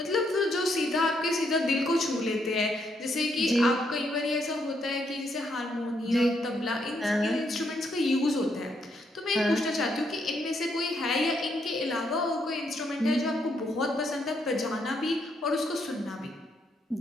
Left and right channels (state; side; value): normal; both; correlation 0.75